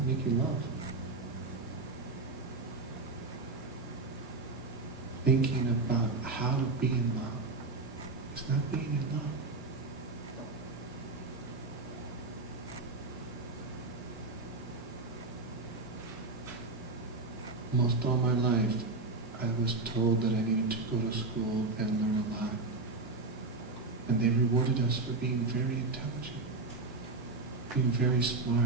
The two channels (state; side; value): quieter; left; 3.5 dB